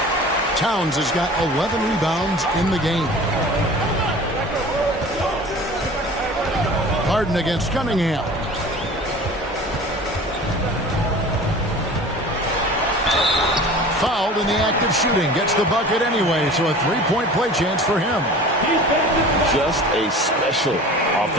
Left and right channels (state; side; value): normal; both; correlation 0.41